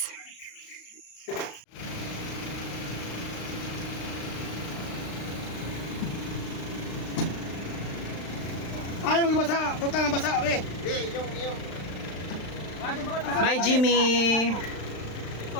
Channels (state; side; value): late; right; 35 ms